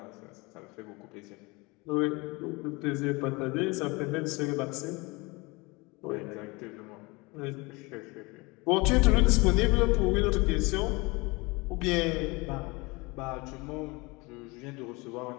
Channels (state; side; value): quieter; right; 25.4 dB